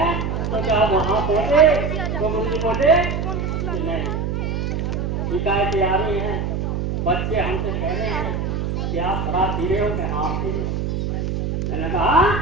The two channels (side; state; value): right; noise; hum, 1 dB below the sound